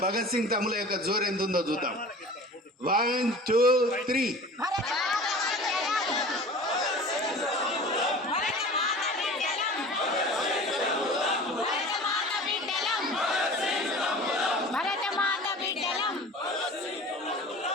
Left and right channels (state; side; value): normal; both; correlation 0.40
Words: భగత్ సింగ్ తమ్ముల యొక్క జోరు ఎంత ఉందో చూద్దాం. 1 2 3.